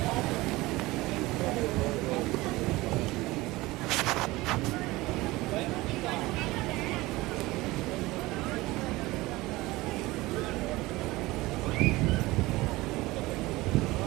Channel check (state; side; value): quieter; left; 20.0 dB